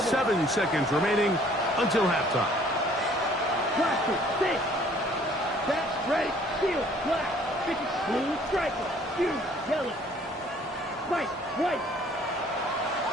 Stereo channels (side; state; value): both; normal; correlation 0.57